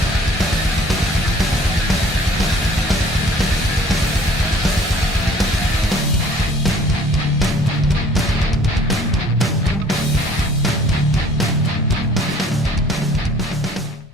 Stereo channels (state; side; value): normal; both; correlation 0.54